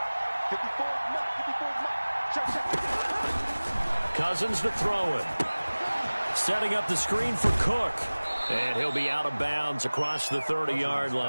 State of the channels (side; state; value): both; inverted; correlation -1.00